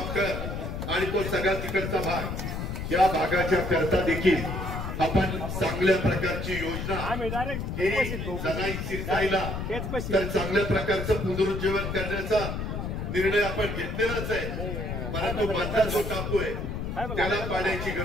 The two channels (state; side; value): noise; left; rumble, 4 dB below the sound